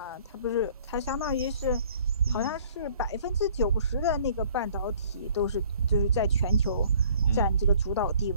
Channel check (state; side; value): inverted; both; correlation -0.55